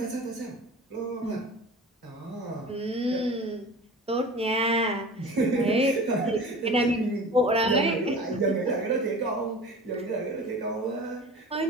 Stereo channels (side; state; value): both; normal; correlation 0.38